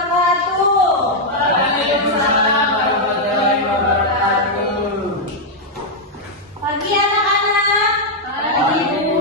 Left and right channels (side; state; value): both; normal; correlation -0.02